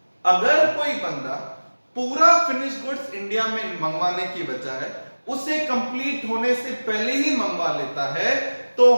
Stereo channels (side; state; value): both; inverted; correlation -1.00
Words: अगर कोई बंदा पूरा फिनिश गुड्स इंडिया में मंगवाने की बजाय उसे कंप्लीट होने से पहले ही मंगवा लेता है, तो